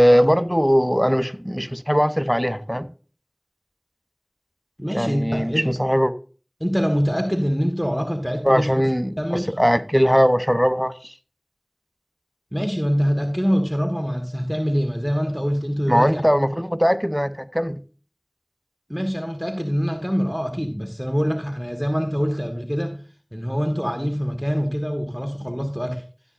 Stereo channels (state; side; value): identical; both; correlation 1.00